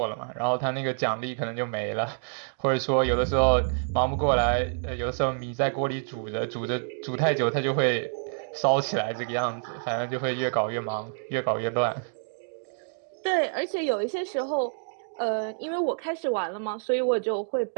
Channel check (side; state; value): left; silent; digital silence